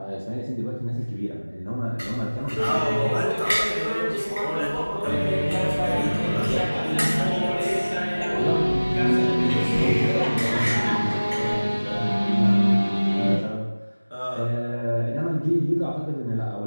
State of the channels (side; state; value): both; inverted; correlation -1.00